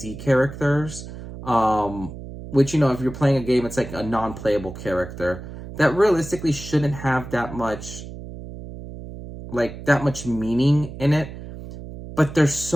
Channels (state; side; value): noise; right; hum, 12 dB below the sound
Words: characters, which, if you're playing a game, it's like a non-playable character that realistically shouldn't have that much meaning in it. But there's